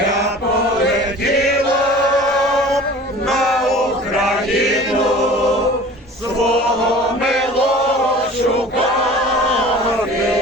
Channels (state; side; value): normal; both; correlation 0.43